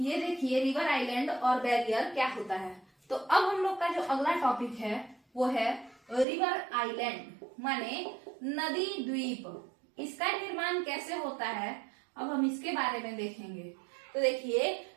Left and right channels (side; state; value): left; drops out; at 6.2 s